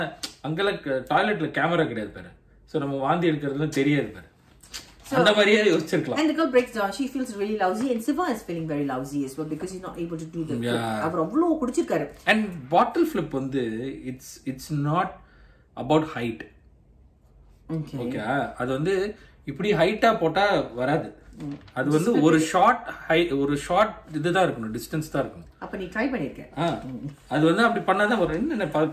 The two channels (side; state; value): both; identical; correlation 1.00